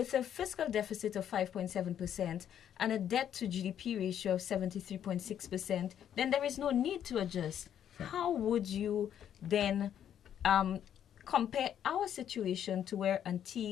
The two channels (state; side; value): quieter; right; 9.8 dB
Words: a fiscal deficit of 5.7% and a debt to GDP ratio of 73.6%, then there is no need to adjust. How would you then compare our situation to where